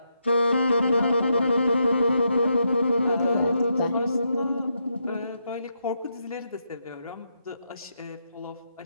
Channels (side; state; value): both; inverted; correlation -0.81